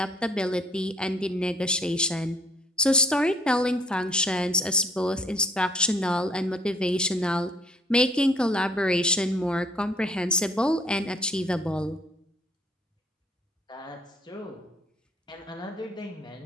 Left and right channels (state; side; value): normal; both; correlation 0.59